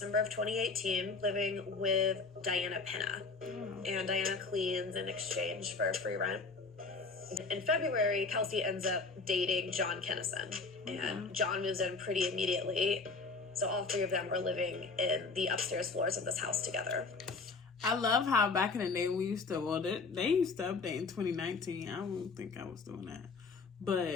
of 2018, living with Diana Pena. And Diana cleans in exchange for free rent. In February, Kelsey ends up dating John Kennison. And John moves in pretty immediately. So all three of them were living in the upstairs floors of this house together. I love how back in the day we used to, well, they used to update in 2019. I don't think I was doing that.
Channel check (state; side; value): quieter; right; 4.2 dB